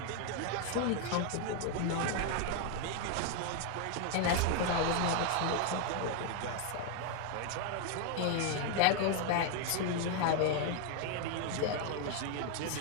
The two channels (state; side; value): different; both; correlation 0.01